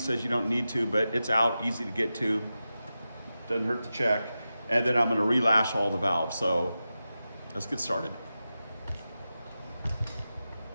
you don't need to, but it's out, easy to get to. Doesn't hurt to check. And then I'm gonna relash all the valves. So let's get started.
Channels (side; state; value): both; inverted; correlation -0.92